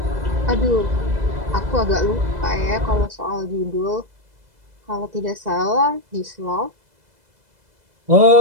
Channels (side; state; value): left; late; 2.0 ms